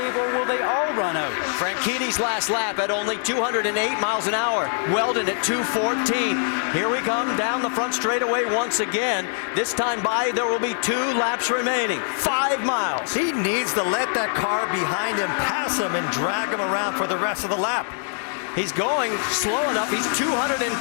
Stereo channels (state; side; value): silent; right; digital silence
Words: or will they all run out? Franchitti's last lap at only 208 miles an hour. Weldon at 214. Here we come down the front straightaway once again. This time by, there will be 2 laps remaining. 5 miles. He needs to let that car behind him pass him and drag him around for the rest of the lap. He's going slow enough. He's